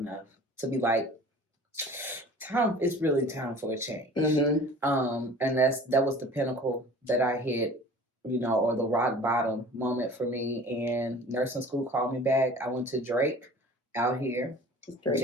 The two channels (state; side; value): normal; both; correlation 0.44